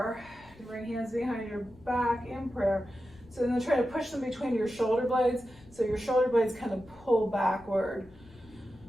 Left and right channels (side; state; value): left; noise; rumble, 24 dB below the sound